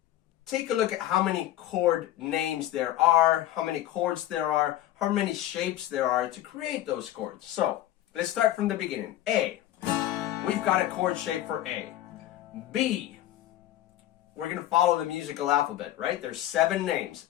take a look at how many chord names there are, how many chords there are, how many shapes there are to create those chords. So let's start from the beginning. A. We've got a chord shape for A. B. We're going to follow the musical alphabet, right? There's 7 names.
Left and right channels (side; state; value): right; quieter; 13.6 dB